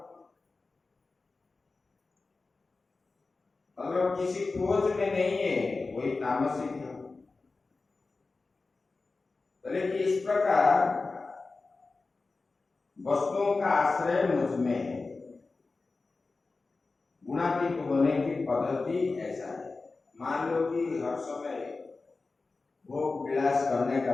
अगर किसी खोज में नहीं है वही तामसिक है। बोले कि इस प्रकार वस्तुओं का आश्रय मुझ में है। गुणातीत होने की पद्धति ऐसा है। मान लो कि हर समय भोग विलास करने का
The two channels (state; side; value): quieter; right; 3.8 dB